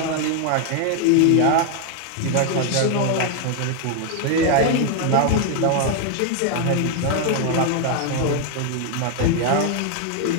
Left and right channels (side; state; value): both; different; correlation 0.01